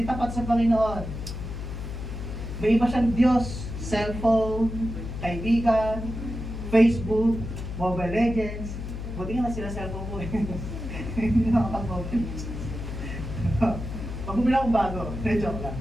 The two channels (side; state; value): left; noise; hum, 7 dB below the sound